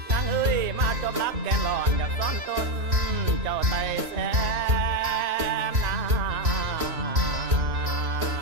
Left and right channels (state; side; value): late; left; 1.9 ms